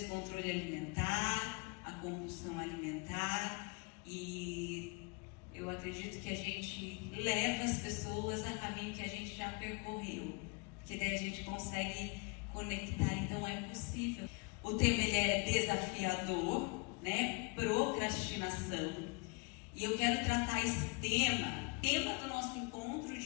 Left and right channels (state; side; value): quieter; right; 31.6 dB